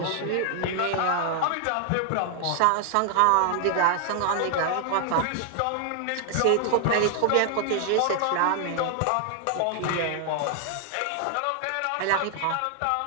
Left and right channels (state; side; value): different; both; correlation 0.00